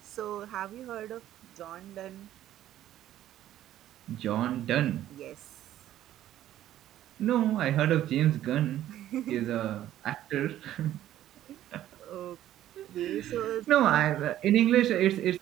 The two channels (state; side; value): quieter; left; 12.7 dB